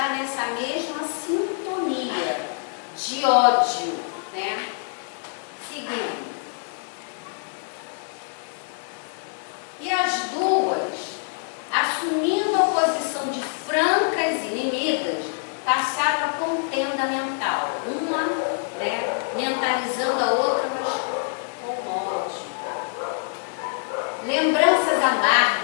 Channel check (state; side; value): silent; right; 62 dB below the other